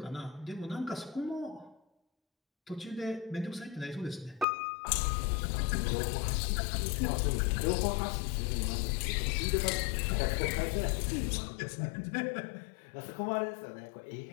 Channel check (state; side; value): drops out; right; at 4.5 s